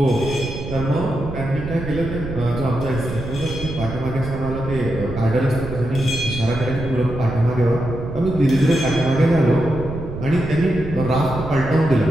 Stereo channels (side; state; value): right; noise; rumble, 8 dB below the sound